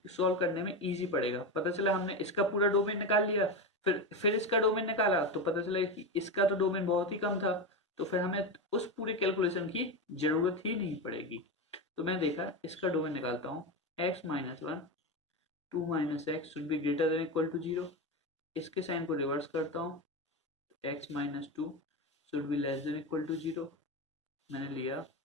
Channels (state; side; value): normal; both; correlation 0.17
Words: सॉल्व करने में इजी पड़ेगा। पता चला हमने इसका पूरा डोमेन निकाल लिया, फिर इसका डोमेन निकाला तो पता चला कि इसका तो डोमेन बहुत ही कम था, तो फिर हमें उस पूरे कैलकुलेशन की जरूरत ही नहीं पड़ेगी। तो मैं देखा इसका डोमेन निकालता हूँ, x minus 1 2 minus x should be greater than equal to 0। इसके साइन को रिवर्स करता हूँ, x minus 2 should be less than equal to 0। मैंने लिया